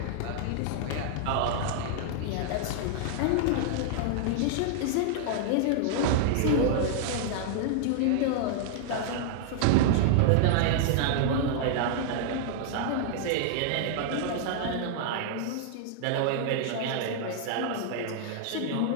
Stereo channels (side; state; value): both; different; correlation -0.01